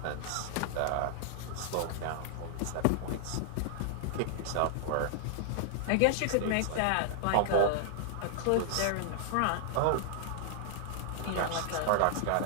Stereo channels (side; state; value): both; different; correlation -0.01